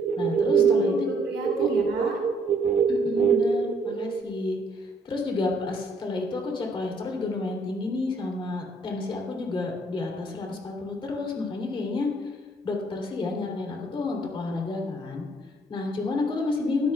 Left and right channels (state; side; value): normal; both; correlation 0.65